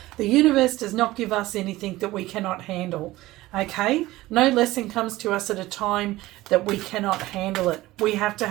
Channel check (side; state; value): left; quieter; 17.8 dB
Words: The universe does not give us anything that we cannot handle. Okay, no lesson comes to us at a time that we cannot handle it. We have to